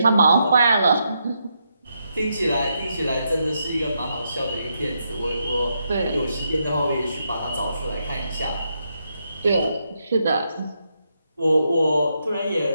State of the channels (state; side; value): inverted; both; correlation -0.81